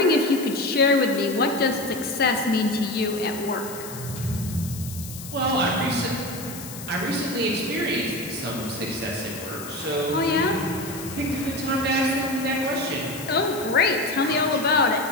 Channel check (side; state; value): left; noise; hiss, 13 dB below the sound